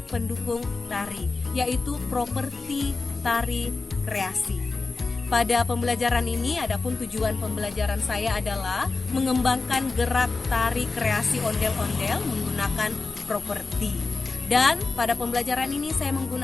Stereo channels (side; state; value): right; quieter; 3.9 dB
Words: pendukung tari, yaitu properti tari kreasi. Pada pembelajaran ini, adapun tujuan pembelajaran saya adalah mengembangkan gerak tari kreasi ondel-ondel menggunakan properti. Dan pada pembelajaran ini saya